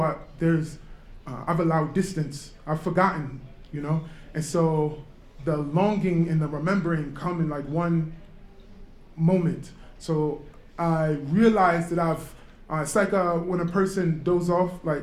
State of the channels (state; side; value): identical; both; correlation 1.00